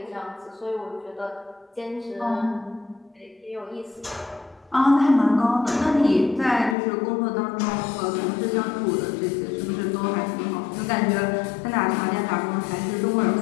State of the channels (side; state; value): right; drops out; at 6.8 s